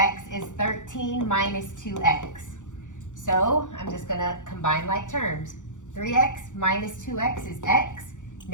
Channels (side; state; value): right; late; 0.86 ms